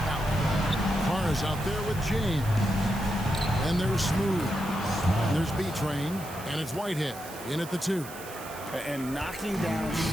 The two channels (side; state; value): right; noise; hiss, 15 dB below the sound